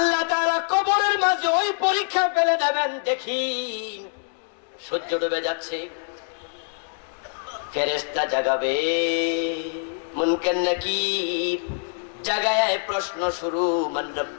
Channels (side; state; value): right; silent; digital silence